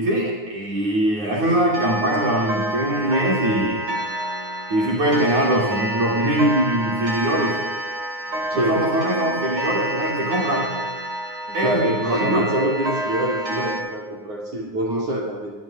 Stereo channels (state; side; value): late; left; 9.6 ms